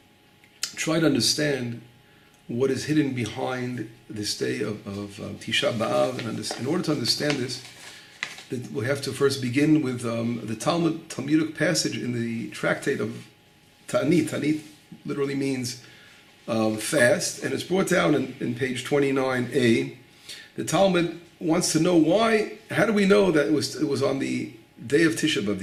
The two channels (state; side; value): identical; both; correlation 1.00